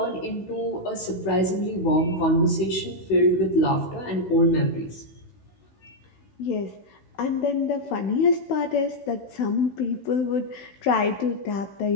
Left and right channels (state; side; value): late; right; 16 ms